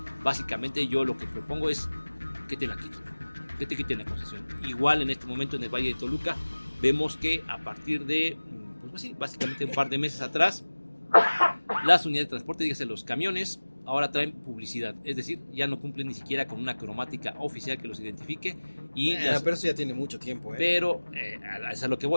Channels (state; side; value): inverted; both; correlation -1.00